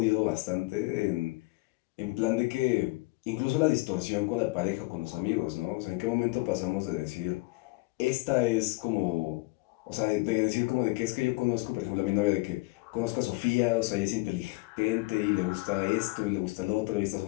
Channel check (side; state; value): right; quieter; 24.3 dB